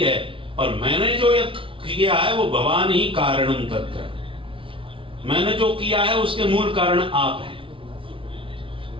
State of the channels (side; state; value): left; late; 0.25 ms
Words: और मैंने जो ये किया है वो भवान ही कारणम तत्र, मैंने जो किया है उसके मूल कारण आप हैं।